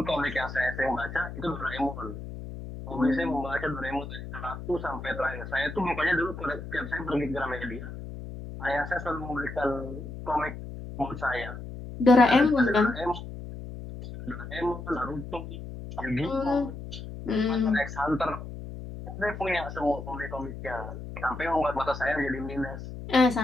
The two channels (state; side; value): noise; left; hum, 10 dB below the sound